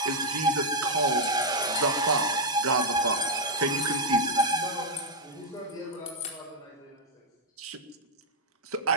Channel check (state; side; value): normal; both; correlation -0.02